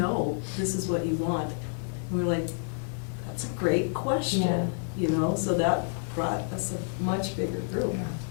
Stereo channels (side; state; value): right; silent; 59 dB below the other